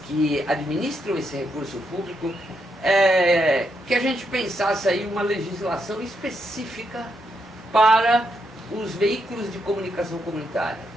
que administram esse recurso público, que a gente pensasse aí uma legislação específica para os veículos de comunicação comunitária,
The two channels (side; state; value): both; normal; correlation 0.79